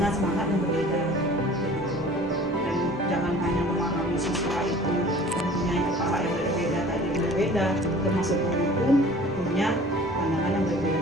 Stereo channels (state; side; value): normal; both; correlation 0.47